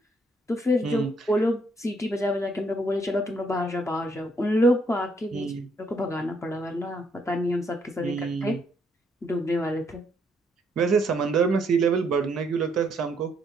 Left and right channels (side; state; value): both; normal; correlation 0.71